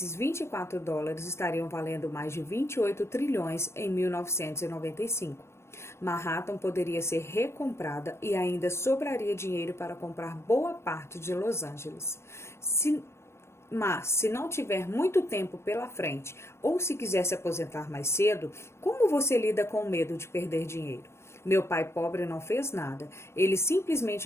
$24 estariam valendo mais de 28 trilhões em 1995. Manhattan poderia ser recomprada e ainda sobraria dinheiro para comprar boa parte de Los Angeles. Mas, se não tiver muito tempo pela frente ou se quiser se aposentar mais cedo, como você lida com o medo de perder dinheiro? Meu pai pobre não fez nada. Ele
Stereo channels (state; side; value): late; right; 0.13 ms